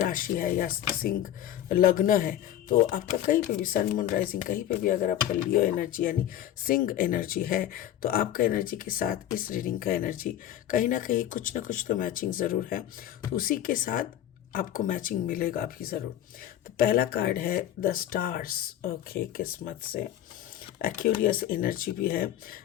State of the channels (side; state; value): right; quieter; 11.7 dB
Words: है या सिंह लग्न है तो आपका कहीं पे भी सन मून राइजिंग कहीं पे भी अगर आपका लियो एनर्जी यानी सिंह एनर्जी है तो आपका एनर्जी के साथ इस रीडिंग का एनर्जी कहीं ना कहीं कुछ ना कुछ तो मैचिंग ज़रूर है. तो उसी के साथ आपको मैचिंग मिलेगा भी ज़रूर. तो पहला कार्ड है द स्टार्स. ओके, किस्मत से एक्यूरियस एनर्जी भी है.